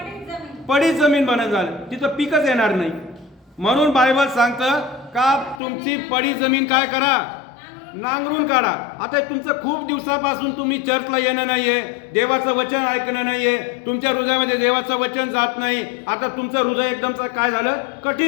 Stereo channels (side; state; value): right; drops out; at 5.6 s